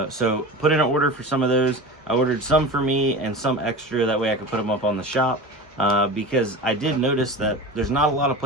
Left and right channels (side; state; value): both; normal; correlation 0.31